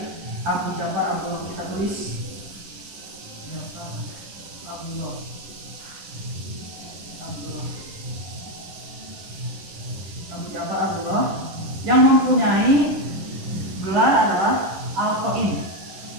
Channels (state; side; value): late; left; 10 ms